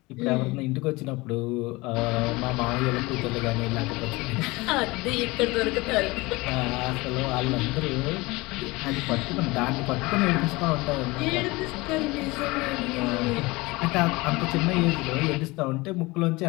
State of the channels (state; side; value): quieter; right; 22.7 dB